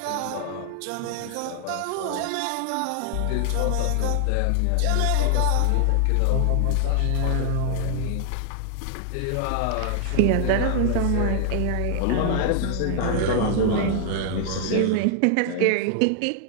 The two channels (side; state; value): both; different; correlation 0.00